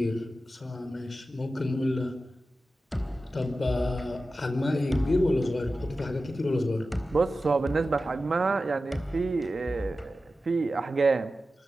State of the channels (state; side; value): normal; both; correlation 0.93